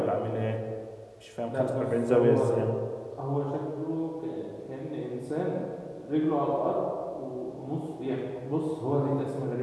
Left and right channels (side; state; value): both; identical; correlation 1.00